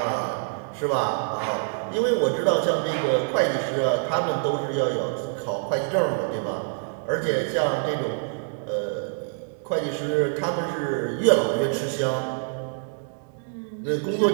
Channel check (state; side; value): silent; left; digital silence